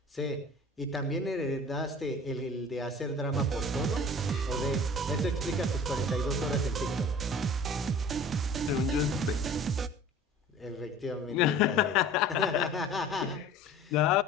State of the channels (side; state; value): both; normal; correlation 0.44